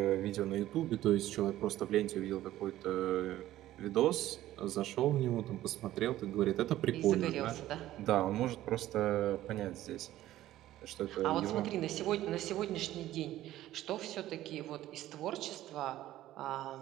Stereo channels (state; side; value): quieter; left; 14.3 dB